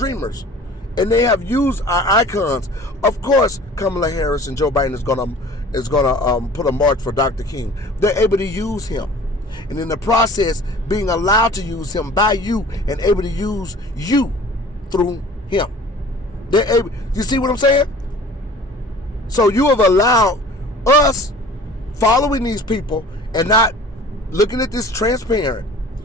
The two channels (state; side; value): normal; both; correlation 0.46